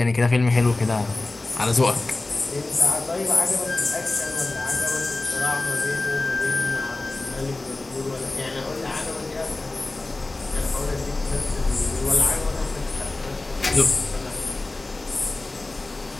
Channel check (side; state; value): right; quieter; 3.1 dB